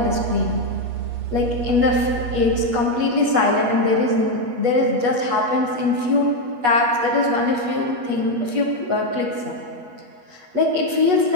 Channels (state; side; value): late; left; 8.3 ms